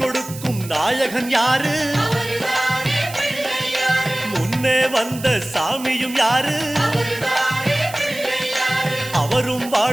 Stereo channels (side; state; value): right; noise; hiss, 14 dB below the sound